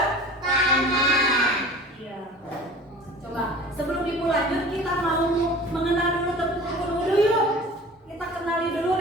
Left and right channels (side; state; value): both; normal; correlation 0.41